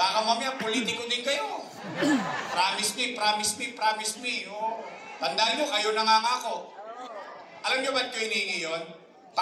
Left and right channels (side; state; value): both; identical; correlation 1.00